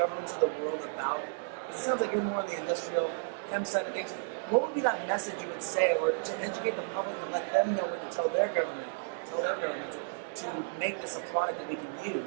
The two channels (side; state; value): left; silent; digital silence